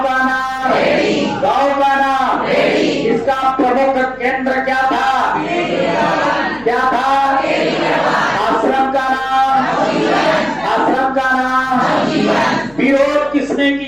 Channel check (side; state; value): left; noise; hum, 26 dB below the sound